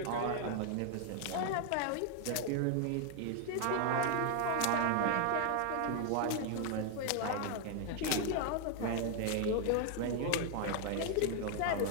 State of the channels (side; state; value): both; different; correlation 0.01